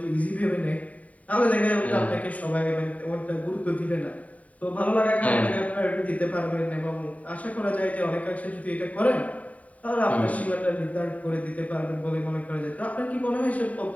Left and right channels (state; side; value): late; right; 0.069 ms